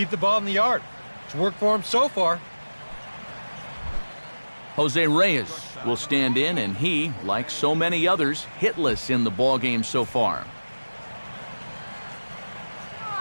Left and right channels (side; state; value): both; inverted; correlation -1.00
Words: the ball in the yard. It's worked for him so far. Jose Reyes will stand in, and he, like so many others, hitless in the ballgame so far.